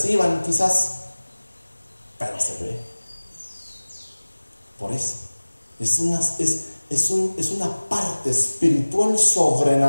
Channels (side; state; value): both; inverted; correlation -1.00